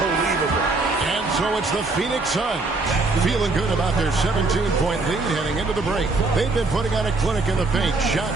And so it's the Phoenix Suns feeling good about their 17-point lead heading into the break. They've been putting on a clinic in the paint.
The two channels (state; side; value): quieter; left; 3.5 dB